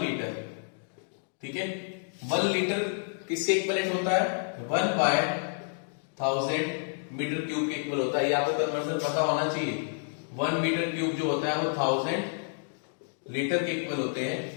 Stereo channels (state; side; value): silent; right; digital silence